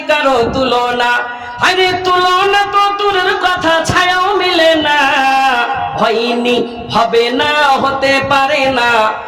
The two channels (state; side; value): identical; both; correlation 1.00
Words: কারো তুলনা। আরে তুলনা তো দূরের কথা, ছায়াও মিলে না। হয়নি হবে না, হতে পারে না,